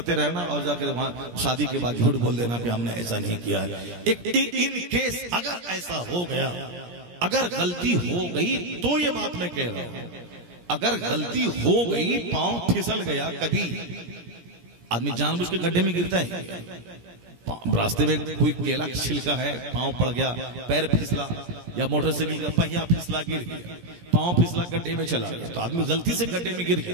रहना और जाकर वहां शादी के बाद झूठ बोल देना कि हमने ऐसा नहीं किया है। एक इन केस अगर ऐसा हो गया, अगर गलती हो गई तो ये बात मैं कह रहा हूं, अगर गलती हो गई, पांव फिसल गया, कभी आदमी जानबूझ के गड्ढे में गिरता है, रास्ते में कोई केला छिलका है, पांव पड़ गया, पैर फिसला, या मोटरसाइकिल का पहिया फिसला, गिर गया, पांव फिसला, गड्ढे में चला गया, तो आदमी गलती से गड्ढे में गिर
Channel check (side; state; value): left; late; 17 ms